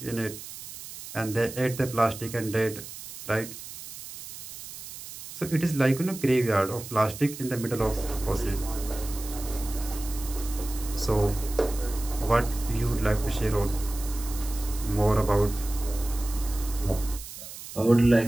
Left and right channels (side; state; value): right; noise; hiss, 12 dB below the sound